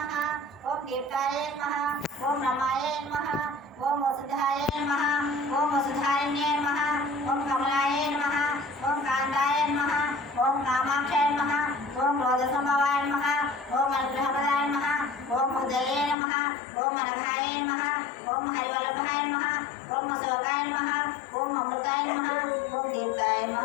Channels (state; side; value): drops out; right; at 16.2 s